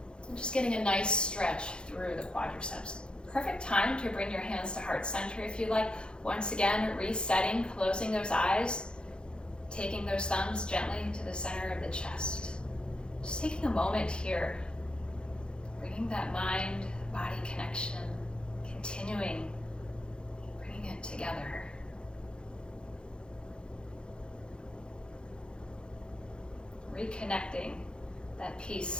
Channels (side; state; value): right; late; 0.051 ms